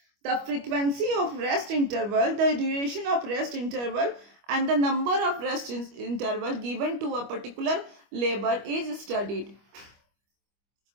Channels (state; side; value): late; left; 25 ms